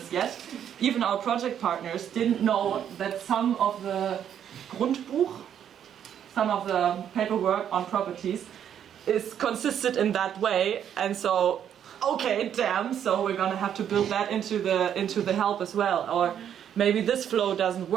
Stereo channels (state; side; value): quieter; left; 9.3 dB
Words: yet. Even our project partners didn't know that some of the Grundbuch, some of the paperwork on properties, is consisted in that way. And so, okay, damn, so we're gonna have to build that into the help as well. Or maybe this flow doesn't